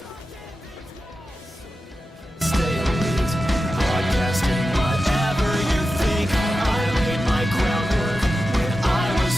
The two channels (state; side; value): normal; both; correlation 0.91